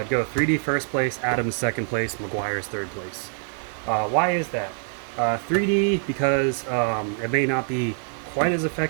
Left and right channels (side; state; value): left; silent; 58 dB below the other